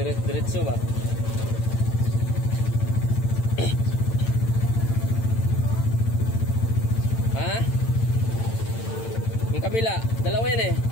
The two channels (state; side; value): late; right; 8.9 ms